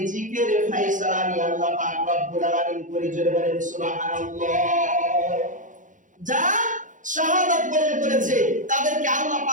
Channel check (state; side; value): late; left; 0.37 ms